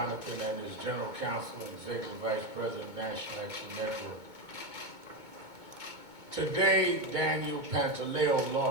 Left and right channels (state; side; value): late; left; 2.2 ms